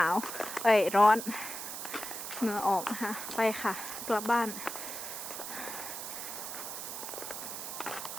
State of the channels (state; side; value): noise; right; hiss, 7 dB below the sound